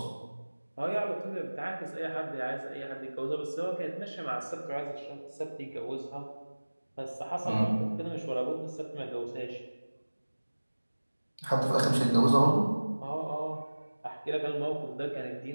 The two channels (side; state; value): both; inverted; correlation -1.00